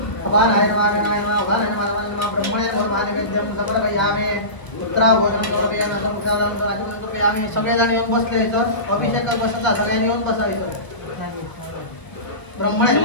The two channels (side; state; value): right; late; 1.3 ms